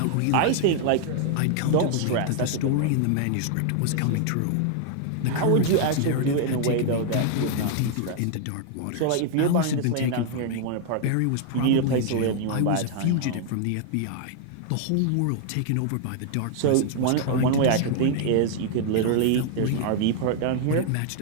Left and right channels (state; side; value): different; both; correlation 0.00